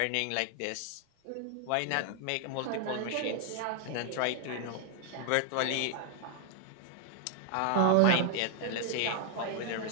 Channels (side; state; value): both; different; correlation 0.00